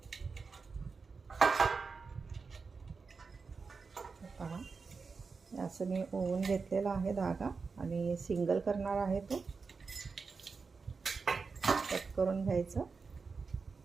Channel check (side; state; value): left; quieter; 4.8 dB